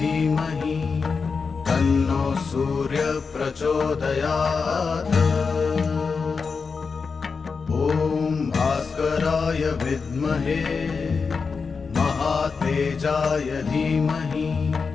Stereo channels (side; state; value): right; quieter; 5.1 dB